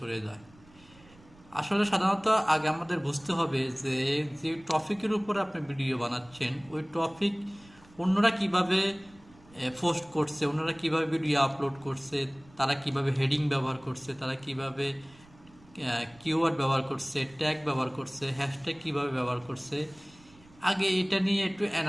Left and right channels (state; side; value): noise; right; rumble, 26 dB below the sound